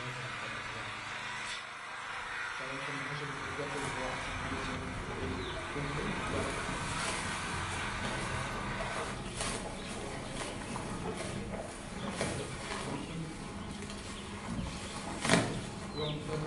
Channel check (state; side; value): identical; both; correlation 1.00